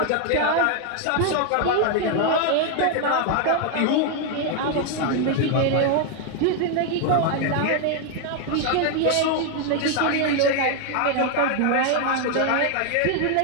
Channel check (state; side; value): different; both; correlation 0.01